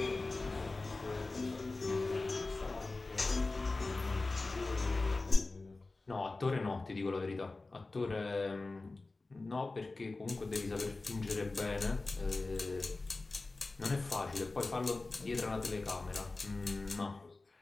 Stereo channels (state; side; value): quieter; right; 3.4 dB